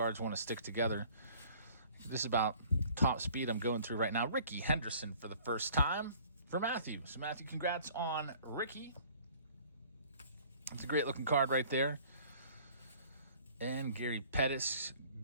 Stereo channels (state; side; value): inverted; both; correlation -0.52